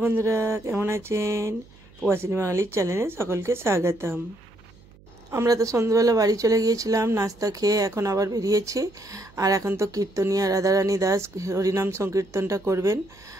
बंधुरा केमन आছেন প্রবাসিনী বাঙালির চ্যানেলে সকলকে স্বাগতম। আমরা তো সন্ধ্যাবেলা বাড়ি চলে গিয়েছিলাম নাস্তা খেয়ে, এখন আবার বেরিয়েছি। আর এখন তো কীর্তনিয়া রাধারানী দাস হরিনাম সংকীর্তনটা করবেন,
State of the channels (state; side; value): noise; right; hum, 26 dB below the sound